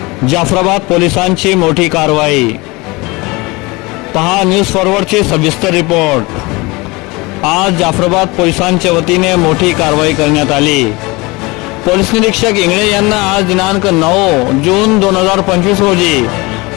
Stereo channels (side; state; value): right; quieter; 24.3 dB